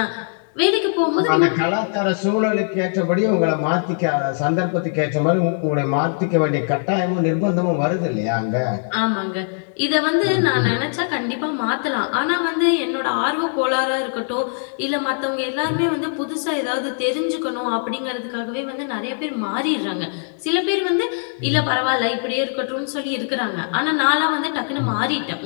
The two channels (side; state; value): right; silent; digital silence